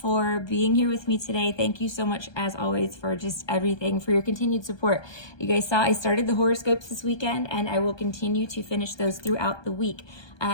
being here with me today. Thank you so much, as always, for just everything, for your continued support. You guys saw I started the horoscopes this weekend, and I will continue to finish those throughout the week.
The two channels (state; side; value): late; right; 1.2 ms